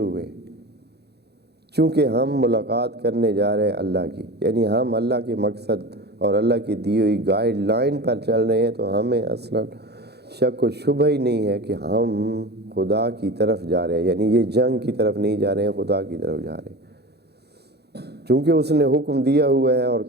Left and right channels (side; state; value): left; late; 0.48 ms